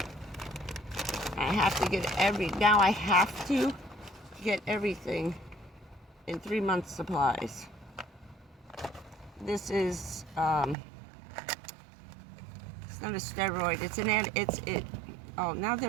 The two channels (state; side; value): drops out; left; at 10.8 s